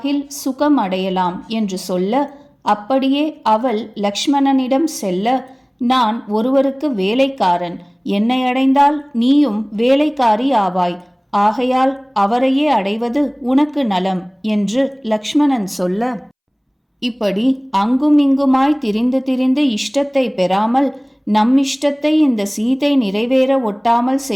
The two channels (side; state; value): both; identical; correlation 1.00